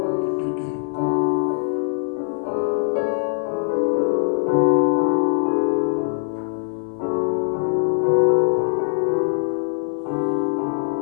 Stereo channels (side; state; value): right; silent; 56 dB below the other